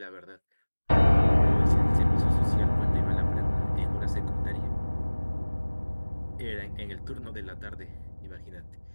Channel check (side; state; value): both; inverted; correlation -1.00